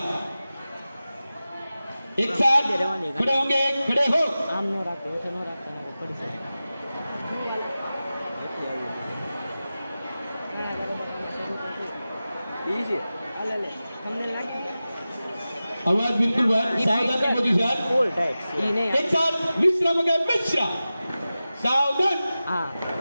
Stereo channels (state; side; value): inverted; both; correlation -0.95